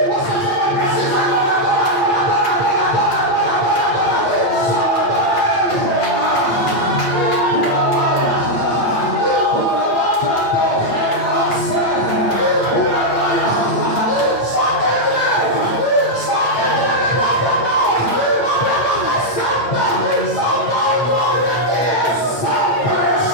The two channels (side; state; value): right; late; 9.0 ms